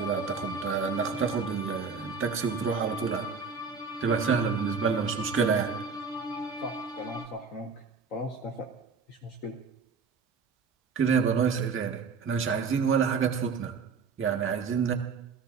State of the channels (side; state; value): left; quieter; 5.2 dB